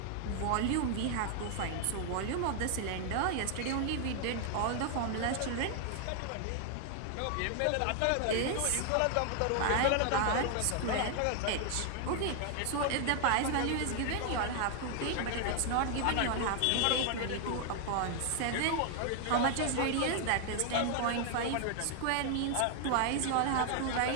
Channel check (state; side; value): different; both; correlation 0.00